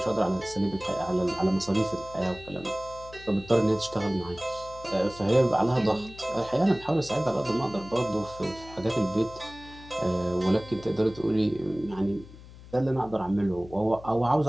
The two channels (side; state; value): left; noise; hum, 18 dB below the sound